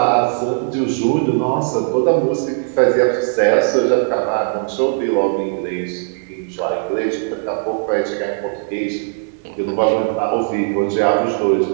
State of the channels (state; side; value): silent; left; 61 dB below the other